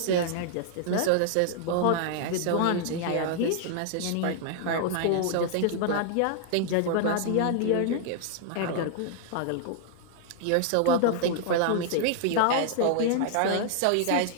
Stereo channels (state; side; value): different; both; correlation -0.01